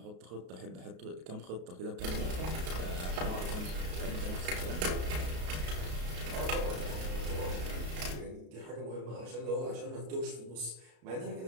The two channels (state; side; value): late; left; 33 ms